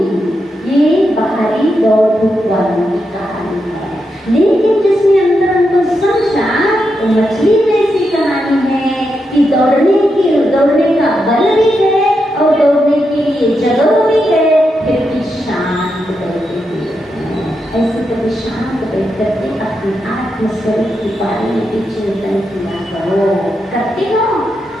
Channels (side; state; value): both; normal; correlation 0.85